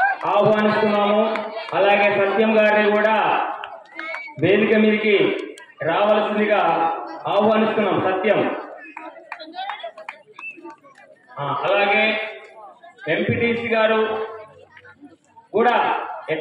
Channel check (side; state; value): both; identical; correlation 1.00